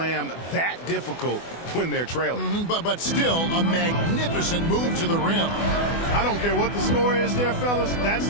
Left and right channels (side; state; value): right; late; 24 ms